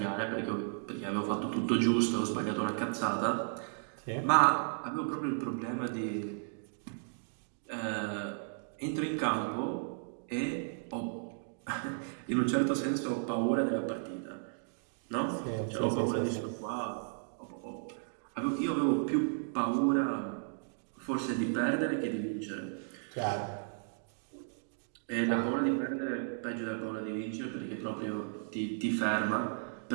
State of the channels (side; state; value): left; silent; digital silence